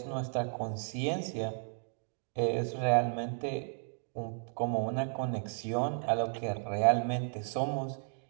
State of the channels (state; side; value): silent; left; digital silence